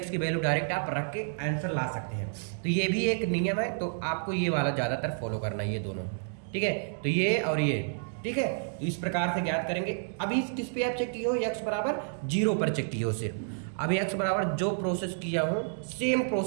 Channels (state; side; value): silent; left; digital silence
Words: की वैल्यू डायरेक्ट आप रख के आंसर ला सकते हैं। तो ये भी एक नियम है, तो आपको ये वाला ज़्यादातर फॉलो करना है, ये दोनों, ठीक है। तो ये और ये, ठीक है, तो इस प्रकार से ज्ञात करेंगे। अभी किस पे आप चेक किए हो, x बराबर 0 पर चेक किए हो सिर्फ। अभी x बराबर जो प्रोसेस किया हूँ सेम